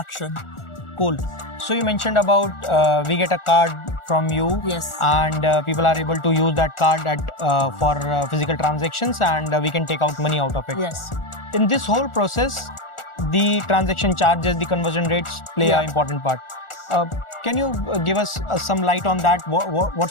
Cool. So you mentioned about we get a card from you, Yes. and people are able to use that card for physical transactions, and we can take out money out of it. Yes. In this whole process, the transaction charges, the conversion rates play Yeah. an important part. Can you give us some light on that?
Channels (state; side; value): late; right; 1.4 ms